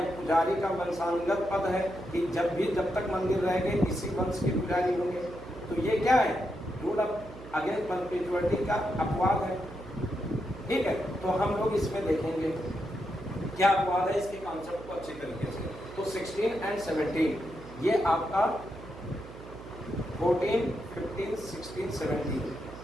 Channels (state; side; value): noise; right; hum, 15 dB below the sound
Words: पुजारी का वंशानुगत पद है कि जब तक मंदिर रहेंगे इसी वंश के पुजारी होंगे। तो ये क्या है? रूल अगेंस्ट परपेचुअलिटी का अपवाद है। ठीक है, तो हम लोग इसमें देखेंगे क्या अपवाद है, इसके कॉन्सेप्ट को अच्छी तरीके से। तो 16 और 17 ये आपका 14, 15, 16,